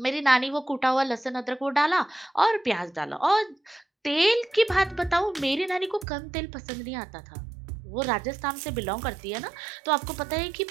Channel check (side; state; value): left; drops out; at 6.1 s